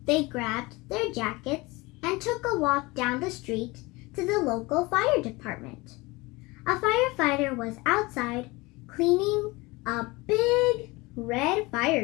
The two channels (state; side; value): quieter; right; 23.2 dB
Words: They grabbed their jackets and took a walk down the street to the local fire department. A firefighter was outside cleaning a big red